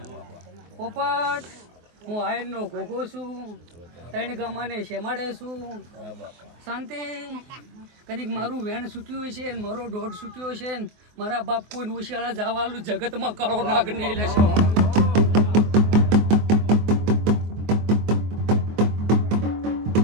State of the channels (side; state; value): left; late; 24 ms